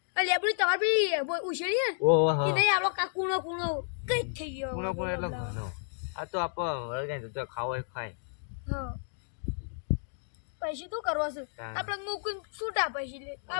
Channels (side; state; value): right; silent; digital silence